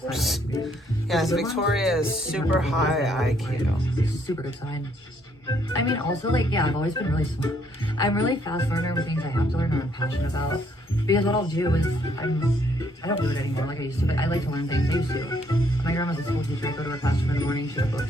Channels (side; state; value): both; normal; correlation 0.69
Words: Yes, Victoria is super high IQ. Super good sign. I mean, also, like, yeah, I've always been really smart. I'm really fast learner with things I have to learn and I'm passionate about. Because what I'll do is, I don't do it anymore like I used to, but I like to learn things. I used to. My grandma's a school teacher. I go to her classroom in the morning. She had